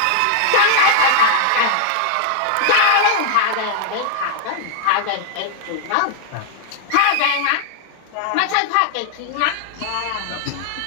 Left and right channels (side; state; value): both; different; correlation 0.00